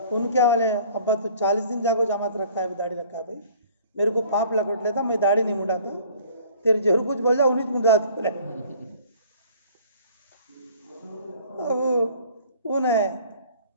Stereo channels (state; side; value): inverted; both; correlation -0.51